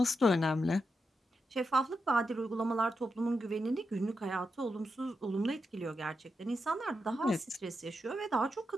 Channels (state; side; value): normal; both; correlation 0.86